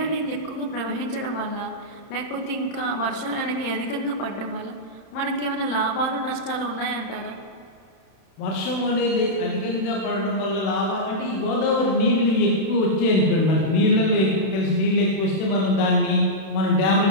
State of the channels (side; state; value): right; late; 31 ms